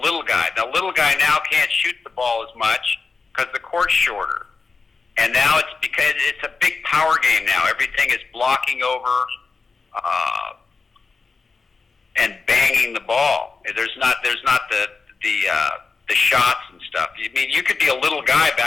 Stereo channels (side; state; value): right; quieter; 4.5 dB